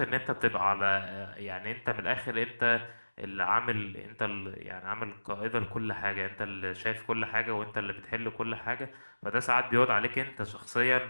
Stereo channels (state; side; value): inverted; both; correlation -1.00